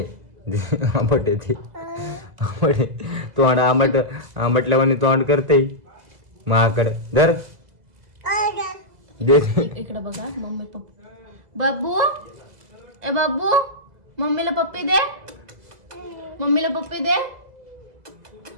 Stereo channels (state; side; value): late; left; 2.0 ms